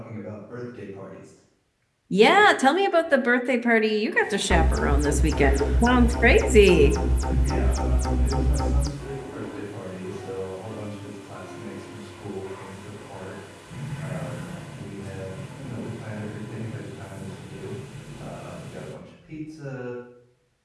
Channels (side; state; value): both; identical; correlation 1.00